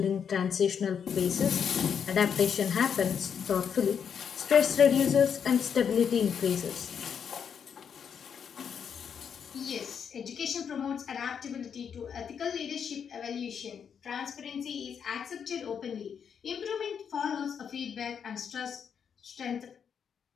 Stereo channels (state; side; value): quieter; right; 7.4 dB